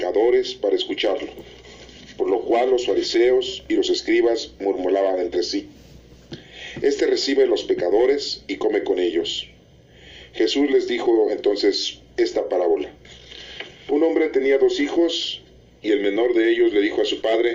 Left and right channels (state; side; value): identical; both; correlation 1.00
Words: para escucharlo, por lo cual los fariseos y los escribas murmuraban entre sí: Este recibe a los pecadores y come con ellos. Jesús les dijo entonces esta parábola. Un hombre tenía 2 hijos, y el menor de ellos le dijo a su